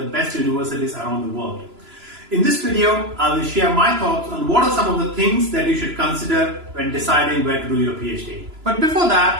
best universities around the world. In this video, I will share my thoughts on what are some of the things that you should consider when deciding where to do your PhD. But before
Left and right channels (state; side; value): late; left; 3.0 ms